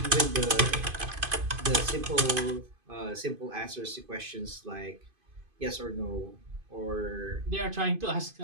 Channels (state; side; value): late; left; 2.5 ms